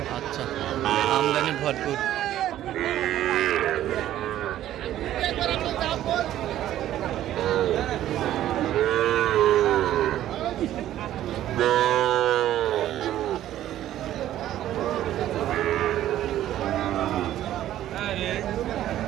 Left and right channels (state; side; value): quieter; left; 12.7 dB